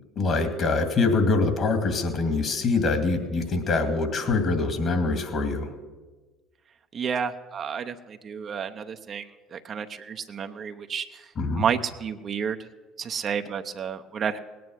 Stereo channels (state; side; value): normal; both; correlation 0.55